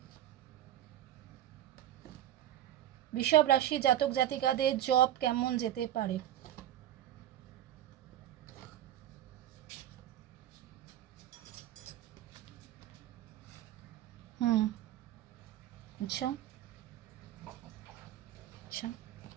বৃষভ রাশি জাতক জাতিকাদের জব কেমন যেতে পারে। अच्छा अच्छा,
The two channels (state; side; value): quieter; left; 12.2 dB